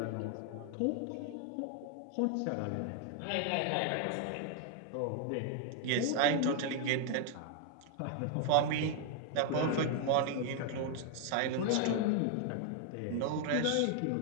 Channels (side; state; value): both; different; correlation 0.00